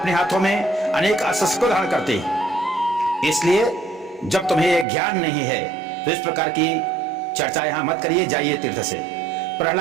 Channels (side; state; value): left; drops out; at 4.9 s